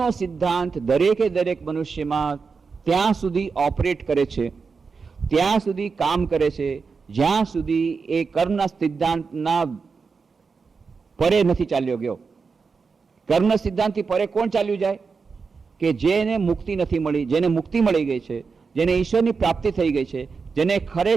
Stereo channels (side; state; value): left; quieter; 5.0 dB